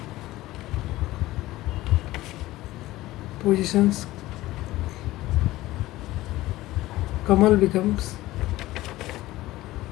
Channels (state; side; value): quieter; right; 17.1 dB